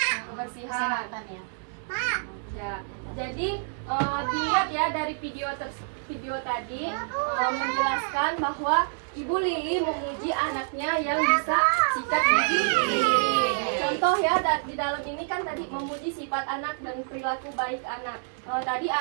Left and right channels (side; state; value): left; silent; digital silence